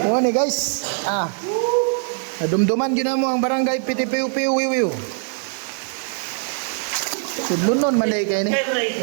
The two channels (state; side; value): silent; left; 55 dB below the other